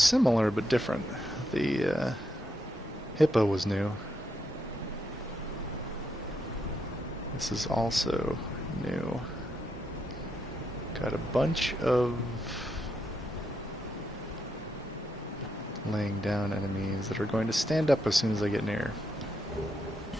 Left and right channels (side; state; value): both; normal; correlation 0.80